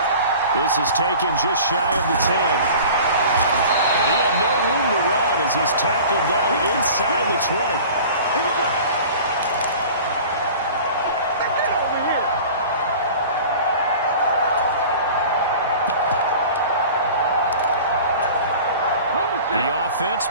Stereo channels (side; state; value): both; inverted; correlation -0.41